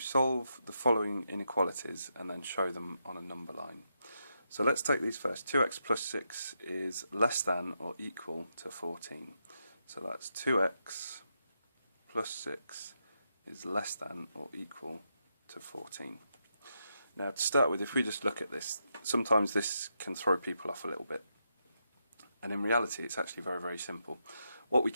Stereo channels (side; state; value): both; inverted; correlation -0.83